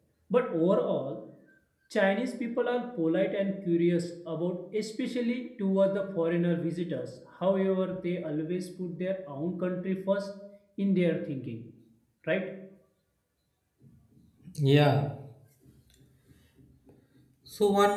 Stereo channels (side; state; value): both; identical; correlation 1.00